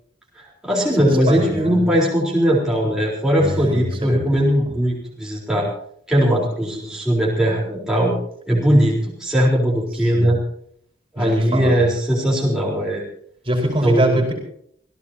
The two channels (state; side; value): normal; both; correlation 0.77